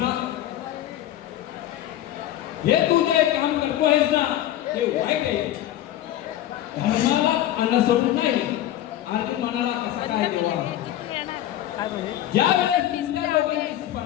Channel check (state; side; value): quieter; right; 12.9 dB